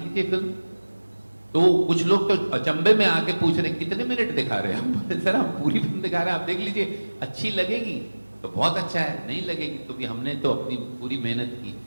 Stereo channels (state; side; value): inverted; both; correlation -1.00